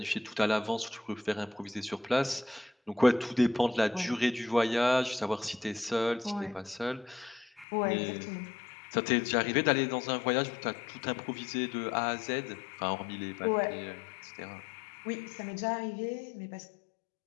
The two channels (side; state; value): right; drops out; at 7.7 s